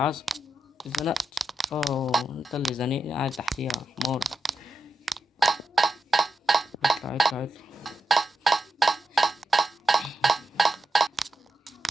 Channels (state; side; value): normal; both; correlation 0.88